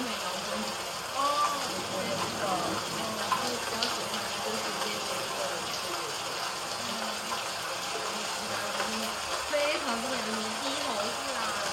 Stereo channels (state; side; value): identical; both; correlation 1.00